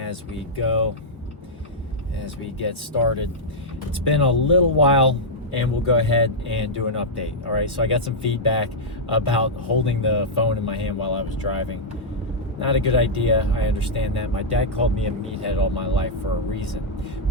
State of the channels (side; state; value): both; normal; correlation -0.07